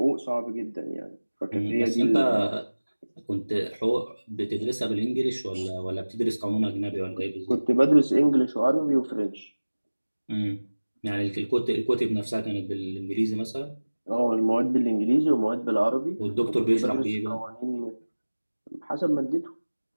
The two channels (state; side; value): inverted; both; correlation -1.00